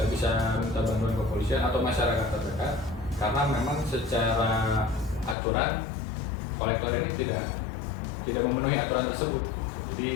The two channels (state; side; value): drops out; right; at 5.4 s